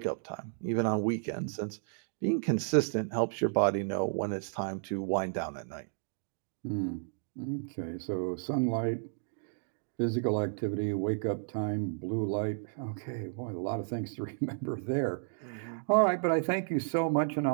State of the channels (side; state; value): left; silent; digital silence